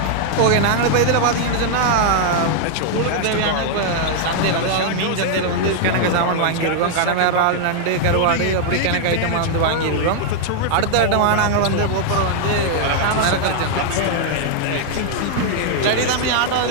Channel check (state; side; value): different; both; correlation 0.00